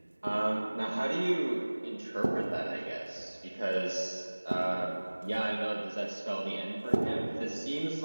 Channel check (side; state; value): both; inverted; correlation -1.00